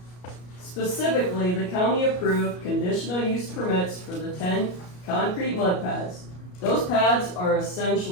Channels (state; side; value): late; right; 33 ms